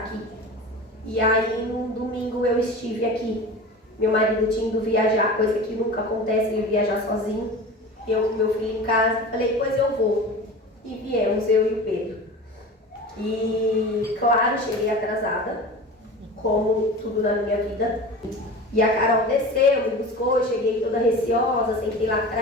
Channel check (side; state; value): both; normal; correlation 0.34